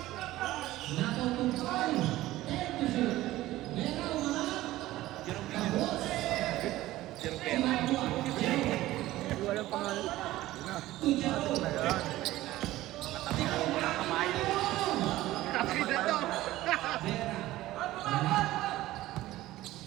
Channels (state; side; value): quieter; left; 16.2 dB